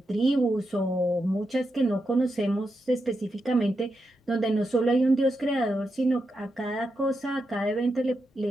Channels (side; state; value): both; normal; correlation 0.86